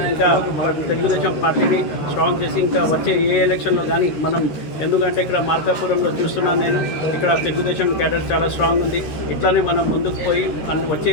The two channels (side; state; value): right; late; 13 ms